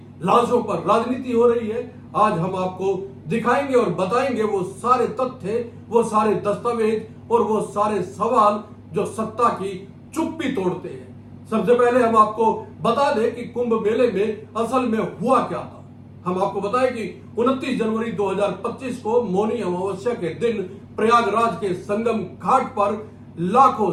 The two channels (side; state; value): both; identical; correlation 1.00